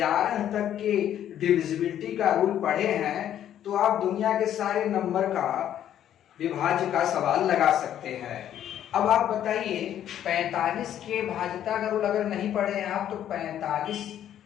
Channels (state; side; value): quieter; right; 10.7 dB